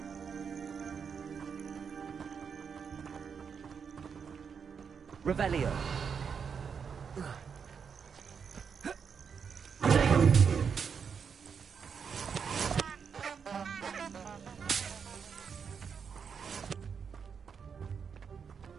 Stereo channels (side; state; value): left; quieter; 6.5 dB